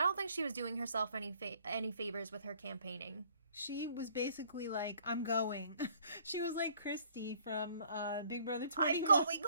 don't think she was doing herself any favors with her campaigning. She was basically like, I'm going. She was like Christy from Big Brother 21.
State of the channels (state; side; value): inverted; both; correlation -0.60